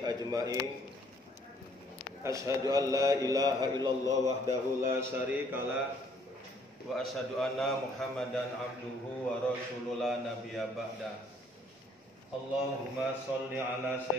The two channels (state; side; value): normal; both; correlation 0.63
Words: ajma'in. Asyhadu an la ilaha illallah wahdahu la syarikalah wa asyhadu anna Muhammadan abduhu wa rasuluhu la nabiyya ba'da. Allahumma sholli ala